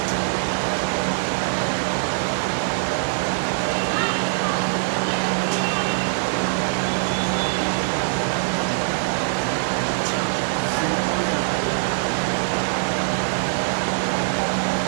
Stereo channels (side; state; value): left; silent; digital silence